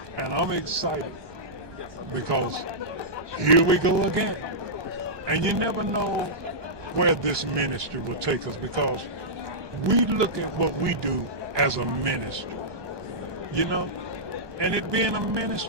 and I'm excited because here we go again. And you never know where this ministry will take us, because we look at what we do as a ministry, you know, and it being a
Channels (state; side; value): late; left; 1.2 ms